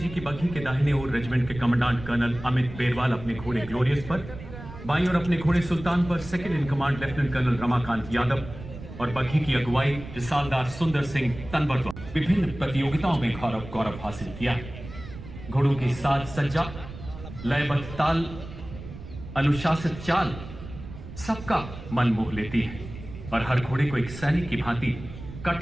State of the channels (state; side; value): noise; right; rumble, 13 dB below the sound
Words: की बग्घी के दाहिने ओर रेजिमेंट के कमांडेंट कर्नल अमित बेरवाल अपने घोड़े ग्लोरियस पर, बाईं ओर अपने घोड़े सुल्तान पर second in command lieutenant colonel Ramakant Yadav और बग्घी की अगुवाई रिसालदार सुंदर सिंह तनवर द्वारा विभिन्न प्रतियोगिताओं में गौरव हासिल किया। घोड़ों की साज सज्जा, लयबद्ध ताल, अनुशासित चाल सबका मन मोह लेती है और हर घोड़े को एक सैनिक की भांति